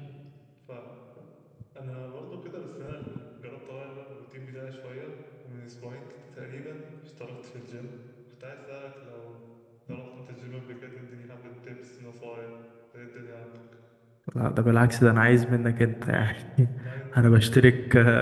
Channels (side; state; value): both; identical; correlation 1.00